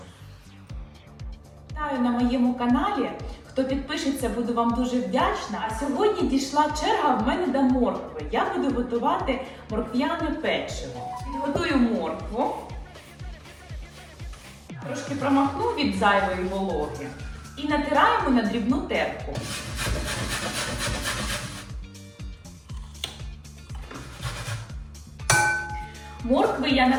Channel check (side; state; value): both; identical; correlation 1.00